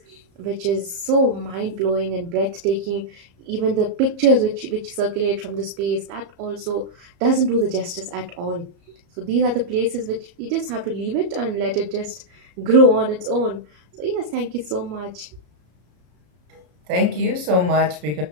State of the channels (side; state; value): left; late; 33 ms